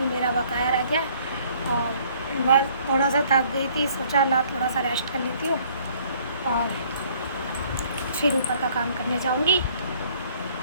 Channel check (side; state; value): both; inverted; correlation -0.60